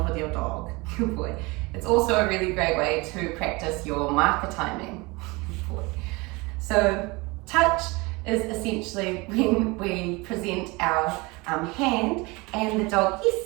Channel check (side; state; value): left; quieter; 25.0 dB